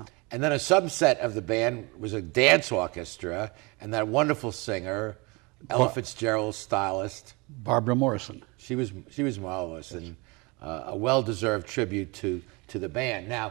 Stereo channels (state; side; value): quieter; left; 27.2 dB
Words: And then a subset of the band was a dance orchestra, and that wonderful singer, Ella Fitzgerald's stylist, Barbara Morrison. She was marvelous, and a well-deserved tribute to the band.